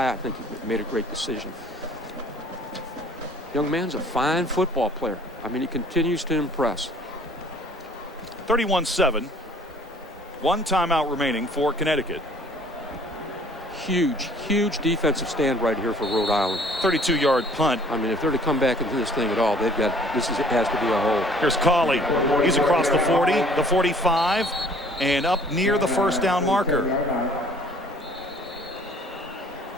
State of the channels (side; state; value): both; normal; correlation 0.53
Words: I think he made a great decision. Young man's a fine football player. I mean, he continues to impress. 31-7. One timeout remaining for Connecticut. Huge defensive stand right here for Rhode Island. 32-yard punt. I mean, if they're to come back into this thing at all, they've got it has to be a hole. Here's Cauley. He's across the 40, the 45, and up near the first down marker.